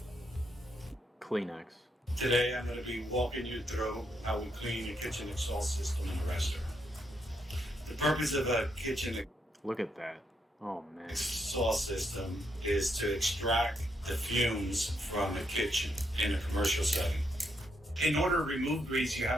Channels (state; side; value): normal; both; correlation 0.78